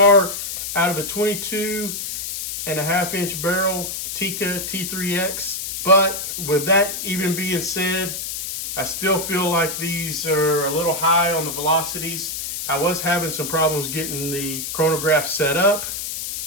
out of a 22.5-inch barrel Tikka T3X. But with that even being said, I still feel like these are a little high on the velocities. I was having some problems getting the chronograph set up.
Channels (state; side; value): noise; left; hiss, 5 dB below the sound